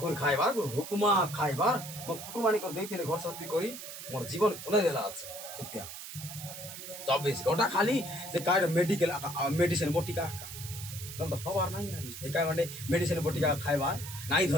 করে খাইবার হুকুমা খাইবার মো কুটুমানি করে দিয়েছিল ঘর সবি করি মোর জীবন খন্দাই দেলা আছে সত্যিয়া 24 ঘন্টা খালি যে কার মেডিকেল মেডিসিন বটিকা তো হবার নাই আরে একা মানে মেডিসিন বটিকা খাইবার নাই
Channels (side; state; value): right; noise; hiss, 10 dB below the sound